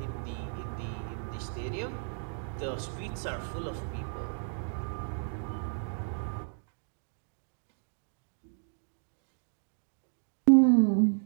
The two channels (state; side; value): silent; left; 56 dB below the other